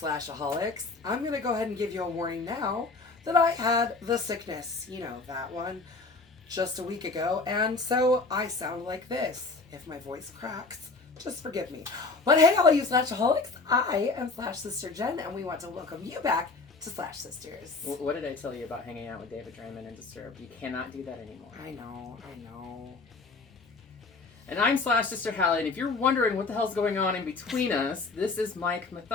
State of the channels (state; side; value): quieter; right; 3.9 dB